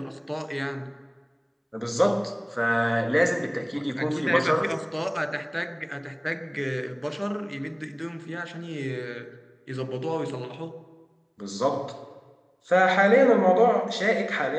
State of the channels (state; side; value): identical; both; correlation 1.00